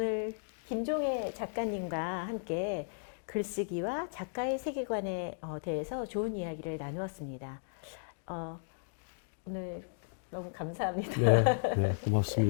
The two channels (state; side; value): silent; right; digital silence